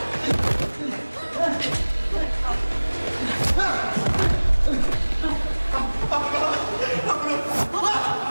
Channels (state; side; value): inverted; both; correlation -1.00